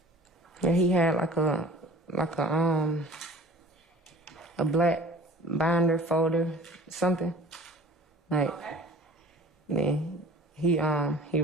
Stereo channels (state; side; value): normal; both; correlation 0.45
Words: Yeah, he had like a black binder folder, something. Like, Okay. then he